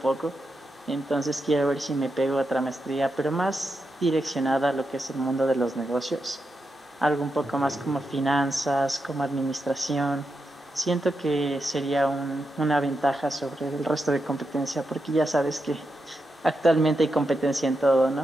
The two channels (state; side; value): normal; both; correlation 0.86